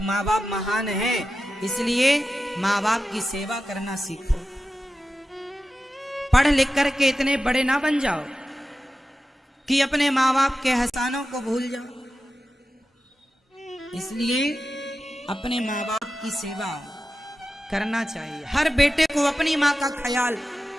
माँ बाप महान है इसलिए माँ बाप की सेवा करना सीखो। पढ़ लिख करके इतने बड़े ना बन जाओ कि अपने माँ बाप के एहसानों को भूल जाओ। इसलिए अपने माँ बाप की सेवा करना चाहिए। हर बेटे को अपनी माँ का ख्याल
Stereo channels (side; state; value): both; normal; correlation 0.93